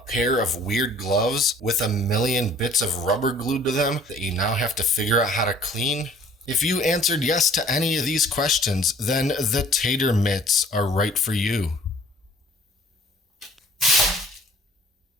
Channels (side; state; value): both; normal; correlation 0.53